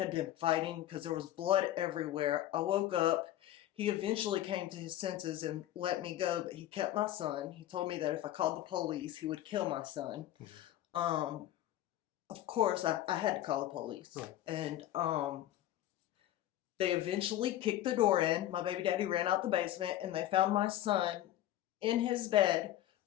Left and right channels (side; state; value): right; quieter; 13.4 dB